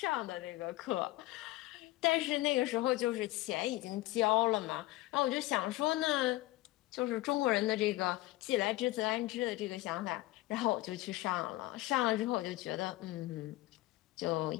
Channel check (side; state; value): right; quieter; 18.1 dB